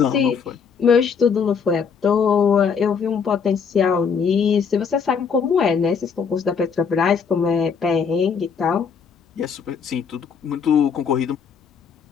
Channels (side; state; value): right; quieter; 6.2 dB